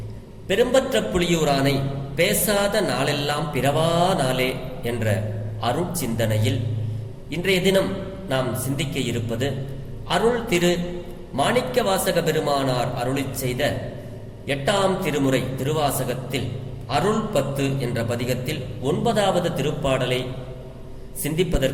பெரும்பற்ற புலியூரானை பேசாத நாளெல்லாம் பிறவா நாளே என்ற அருட்சிந்தனையில் இன்றைய தினம் நாம் சிந்திக்க இருப்பது அருள் திரு மாணிக்கவாசக பெருமானார் அருளிச் செய்த 8ஆம் திருமுறை திருவாசகத்தில் அருள் 10 என்ற பதிகத்தில் 9வது திருப்பாடலை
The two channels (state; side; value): identical; both; correlation 1.00